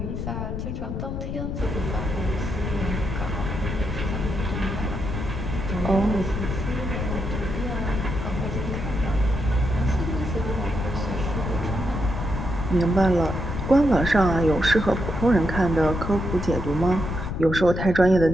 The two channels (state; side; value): noise; left; rumble, 4 dB below the sound